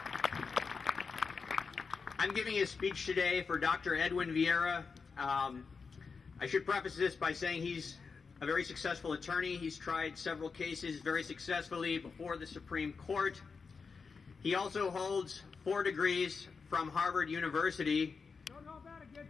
I'm giving a speech today for Dr. Edwin Viera. I should preface this by saying he's a very successful attorney. He's tried several cases very successfully before the Supreme Court. He also holds 4 degrees from Harvard University. Don't hold that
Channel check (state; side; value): quieter; right; 5.1 dB